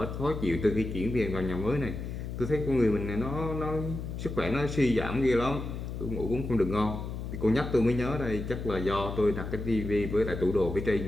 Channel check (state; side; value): noise; left; hum, 6 dB below the sound